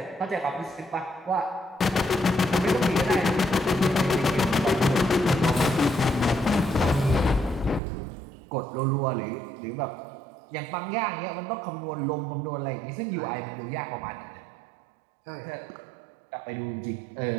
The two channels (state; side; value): drops out; left; at 7.8 s